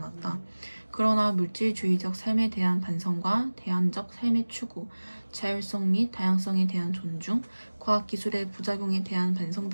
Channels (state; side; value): inverted; both; correlation -1.00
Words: 그러나 물질주의적 삶에 대한 반성과 대안적 삶의 추구, 자율성 및 다양성에 대한 존중, 과학기술의 부작용에 대한 반성